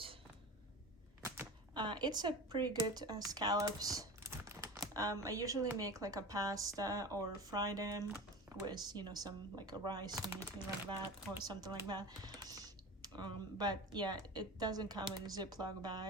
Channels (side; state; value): both; normal; correlation 0.31